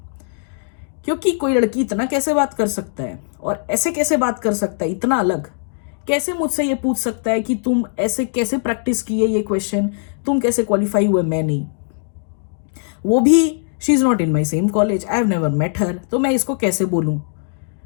क्योंकि कोई लड़की इतना कैसे बात कर सकता है और ऐसे कैसे बात कर सकता है, इतना अलग कैसे मुझसे ये पूछ सकता है कि तुम ऐसे कैसे प्रैक्टिस किए ये क्वेश्चन, तुम कैसे क्वालिफाई हुए, मैं नहीं। वो भी she is not in my same college, I have never met her, तो मैं इसको कैसे बोलूं,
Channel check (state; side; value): silent; right; digital silence